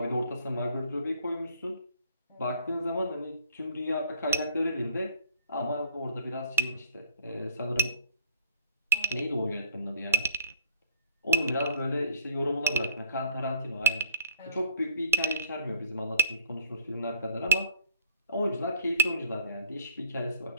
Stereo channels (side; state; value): both; inverted; correlation -0.54